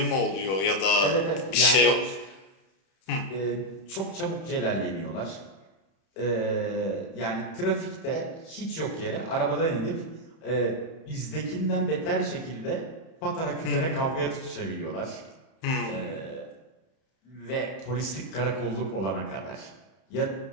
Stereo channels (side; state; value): right; late; 31 ms